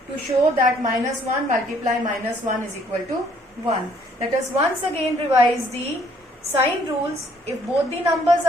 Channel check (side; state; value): both; normal; correlation 0.63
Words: to show that minus 1 multiply minus 1 is equal to 1. Let us once again revise the sign rules. If both the numbers